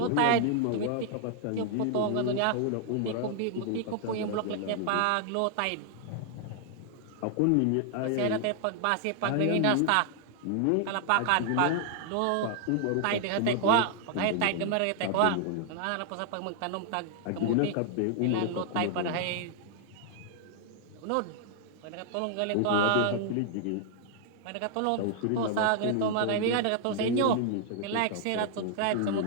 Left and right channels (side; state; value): both; different; correlation 0.00